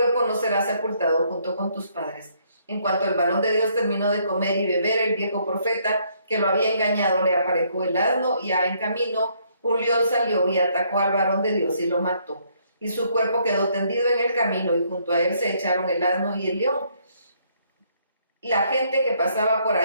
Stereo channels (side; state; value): both; inverted; correlation -0.68